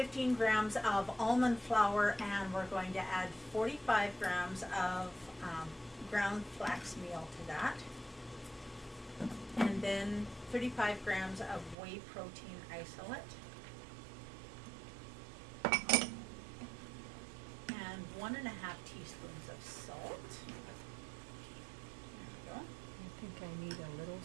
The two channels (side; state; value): left; drops out; at 11.8 s